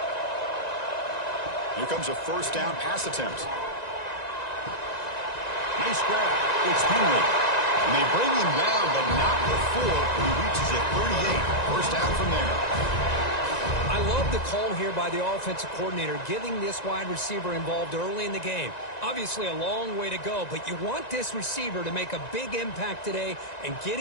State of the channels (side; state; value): right; late; 1.9 ms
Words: Here comes a first down pass attempt. Nice grab. It's Henry. And they bring him down, but not before he reaches it 38. First down from there. I love the call here by the offensive coordinator, getting this wide receiver involved early in the game. Obviously a long way to go, but you want this receiver to make a big impact today and get